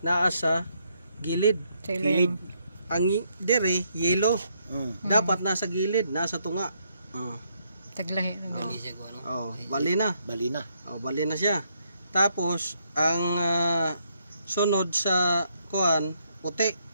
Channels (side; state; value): both; inverted; correlation -0.74